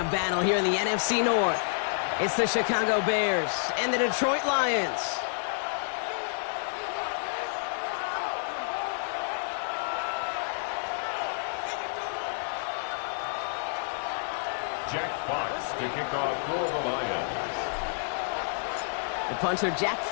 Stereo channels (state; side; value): silent; right; digital silence